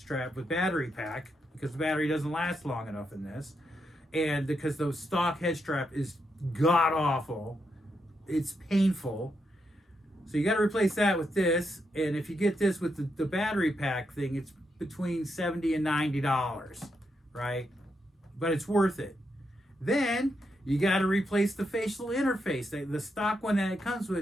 with battery pack, because the battery doesn't last long enough in this, and because the stock head strap is god awful, it's painful. So you got to replace that with this, and if you get this with the battery pack thing, it's between $70 and $90, right? But it's worth it. Then you got to replace the facial interface. The stock one that it comes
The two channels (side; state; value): both; normal; correlation 0.82